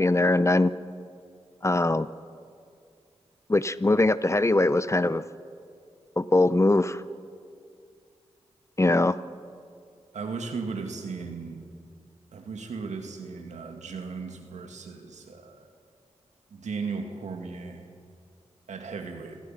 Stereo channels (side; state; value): both; normal; correlation 0.84